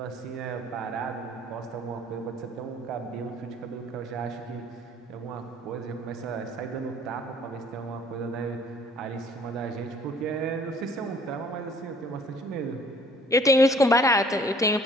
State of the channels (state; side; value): normal; both; correlation 0.56